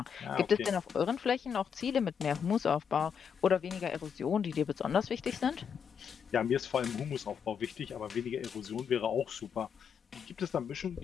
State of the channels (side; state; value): right; quieter; 7.2 dB